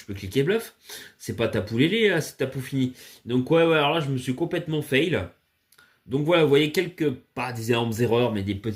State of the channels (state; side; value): identical; both; correlation 1.00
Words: cliquer bluff. C'est pas Tapoulélé, là, c'est Tapou fini. Donc, ouais, alors là, je me suis complètement fail. Donc, voilà, vous voyez pas des énormes erreurs, mais des